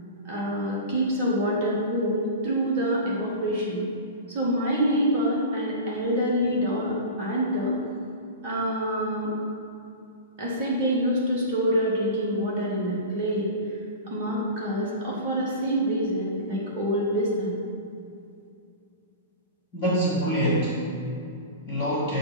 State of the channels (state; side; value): inverted; both; correlation -0.31